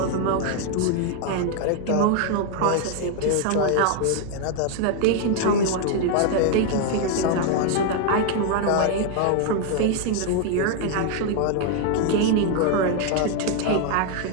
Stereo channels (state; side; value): different; both; correlation 0.00